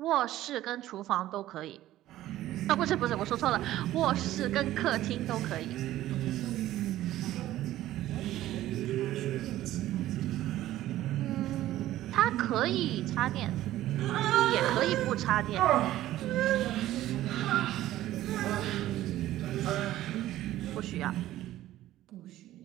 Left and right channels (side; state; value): left; quieter; 14.4 dB